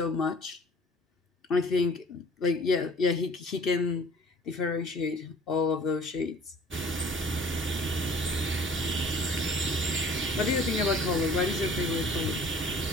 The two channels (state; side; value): normal; both; correlation 0.50